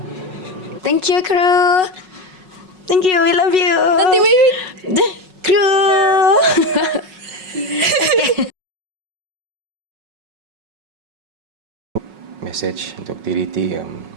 Thank you, crew. Thank you, we love you. Nanti crew. Message untuk TDT,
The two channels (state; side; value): late; left; 5.4 ms